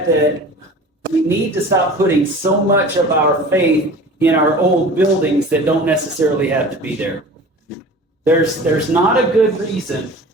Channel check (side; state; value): both; normal; correlation 0.40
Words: that we need to stop putting so much of our faith in our old buildings that don't necessarily have to be there. There's not a good reason